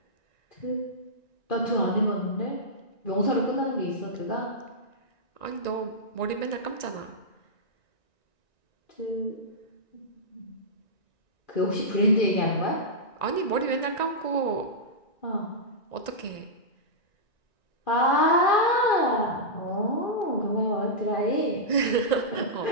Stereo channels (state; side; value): late; right; 1.9 ms